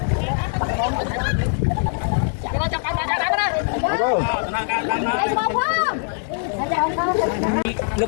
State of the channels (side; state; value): right; silent; 64 dB below the other